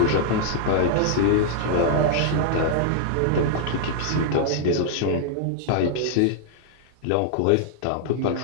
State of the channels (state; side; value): different; both; correlation 0.00